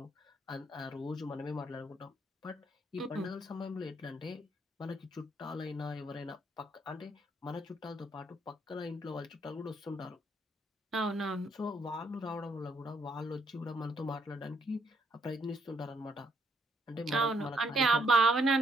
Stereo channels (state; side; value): normal; both; correlation 0.71